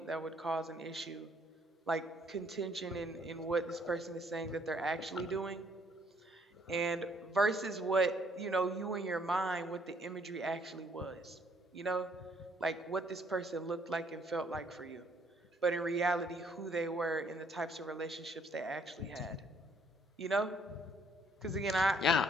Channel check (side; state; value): both; normal; correlation 0.65